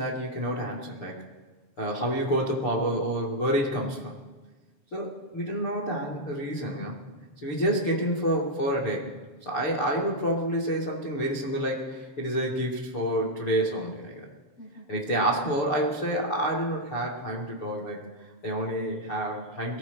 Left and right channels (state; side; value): late; right; 6.8 ms